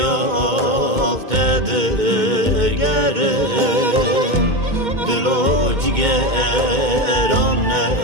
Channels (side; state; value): left; late; 2.2 ms